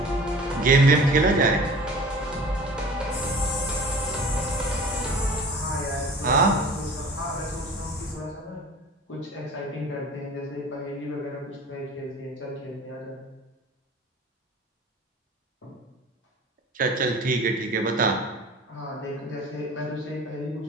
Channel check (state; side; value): normal; both; correlation 0.42